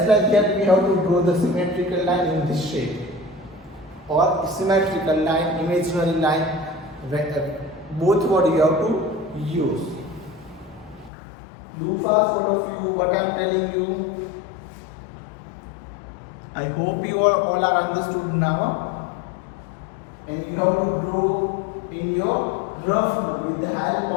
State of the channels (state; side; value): drops out; right; at 11.1 s